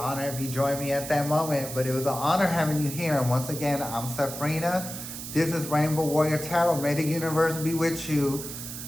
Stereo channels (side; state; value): right; noise; hiss, 9 dB below the sound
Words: if you join me at that moment. But it was an honor having you here. And once again, I'm Safrina. This is Rainbow Warrior Tarot. May the universe be with you,